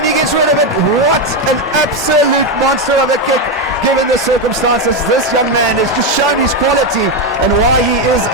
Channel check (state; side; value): normal; both; correlation 0.08